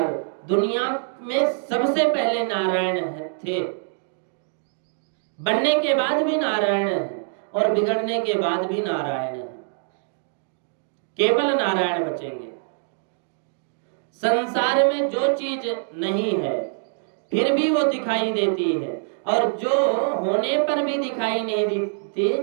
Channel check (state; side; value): silent; left; digital silence